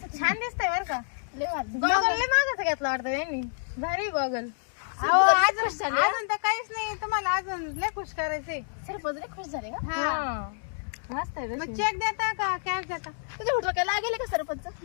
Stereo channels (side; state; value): right; silent; digital silence